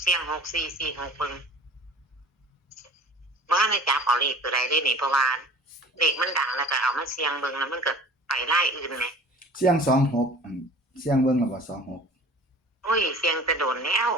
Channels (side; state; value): both; normal; correlation 0.44